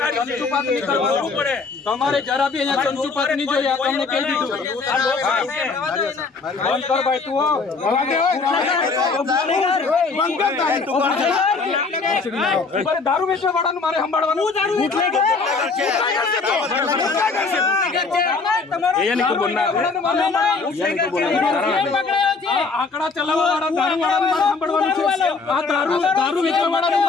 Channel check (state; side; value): quieter; right; 4.4 dB